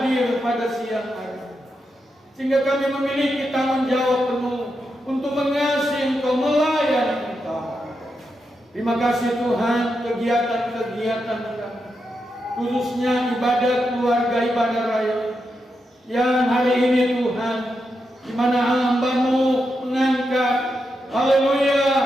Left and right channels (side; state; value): both; normal; correlation 0.85